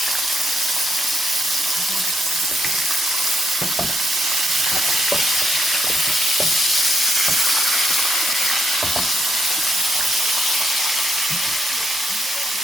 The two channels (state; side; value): normal; both; correlation 0.76